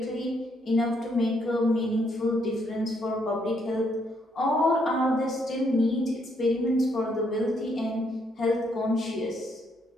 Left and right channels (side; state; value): both; normal; correlation 0.73